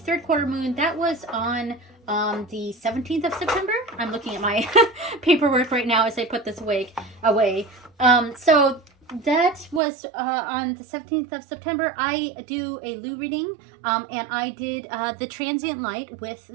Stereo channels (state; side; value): drops out; left; at 9.8 s